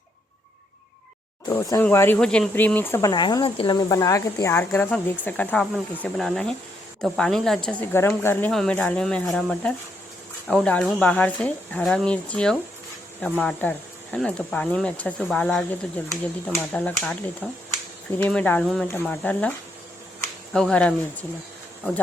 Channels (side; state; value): both; normal; correlation 0.76